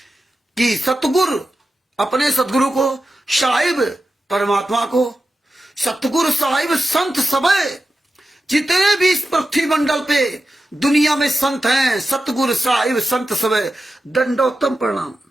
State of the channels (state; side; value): normal; both; correlation 0.91